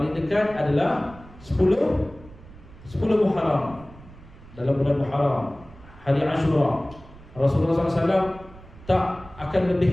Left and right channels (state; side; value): noise; right; rumble, 20 dB below the sound